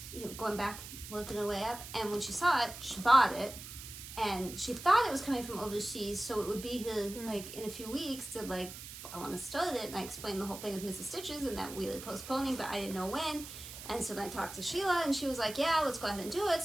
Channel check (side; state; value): right; noise; hiss, 12 dB below the sound